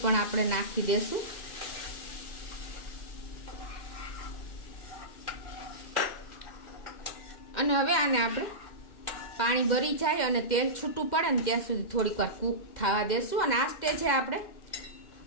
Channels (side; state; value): right; late; 2.1 ms